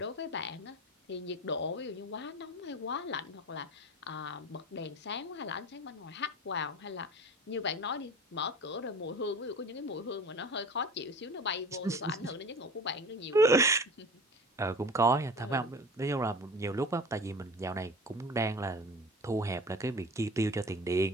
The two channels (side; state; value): both; normal; correlation 0.37